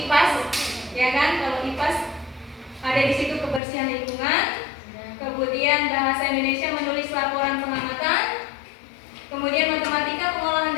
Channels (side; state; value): right; drops out; at 3.6 s